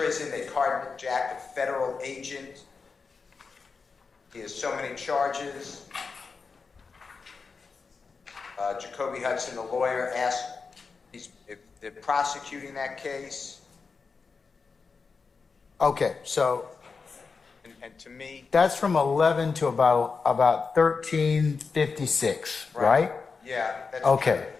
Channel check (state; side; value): quieter; right; 4.9 dB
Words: They carjacked a federal agent. He has so many charges. Jacoby Hudson, the lawyer, asked if they're prosecuting that case. Okay, so and to me, that's from 11 to about 13:56, right? Yeah. That's okay.